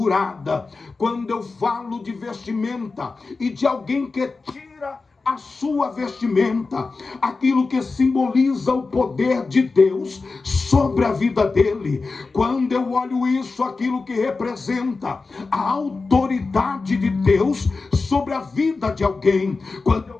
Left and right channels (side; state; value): right; quieter; 4.0 dB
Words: Quando eu falo de vestimenta e de alguém que tira a sua vestimenta, aquilo que simboliza o poder de Deus sobre a vida dele. Quando eu olho isso, aquilo que representa a autoridade de Deus sobre a vida de alguém. Quando